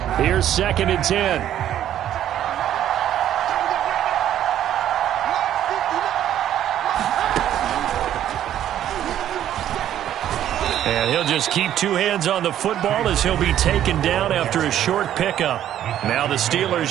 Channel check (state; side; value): quieter; left; 11.3 dB